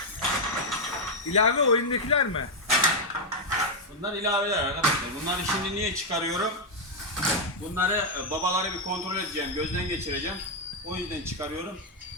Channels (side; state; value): both; normal; correlation 0.00